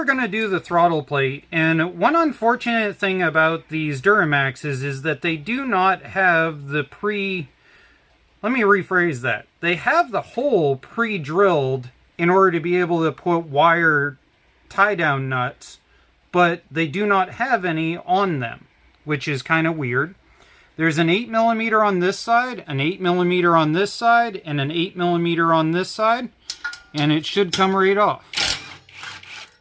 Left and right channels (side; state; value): both; identical; correlation 1.00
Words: going to do the throttle plate. And one unfortunate thing about these Duramaxes is that they do not have the let me rephrase that. They have the hole pre-drilled in order to be able to put wire tie-down nuts, but they do not have any on them, which is kind of weird. There's an 8mm on this side, an 8mm on this side, and an 8mm on this side, and it should come right off.